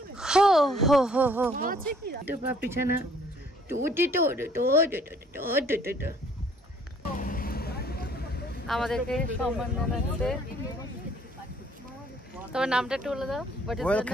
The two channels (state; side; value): normal; both; correlation 0.60